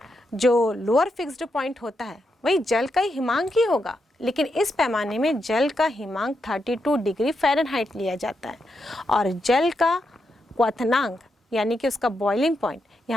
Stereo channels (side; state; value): both; normal; correlation 0.83